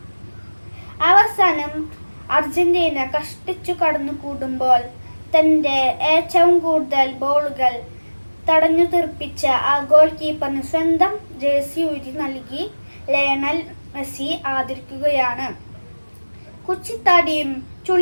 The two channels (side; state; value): both; inverted; correlation -1.00